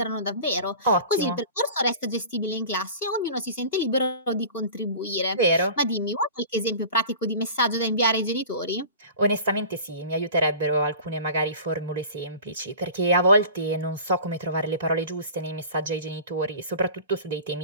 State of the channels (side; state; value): both; inverted; correlation -0.39